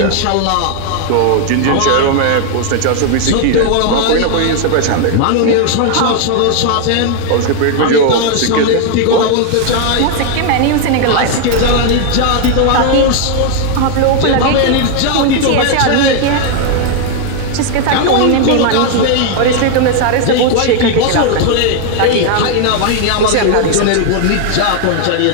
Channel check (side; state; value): both; different; correlation 0.00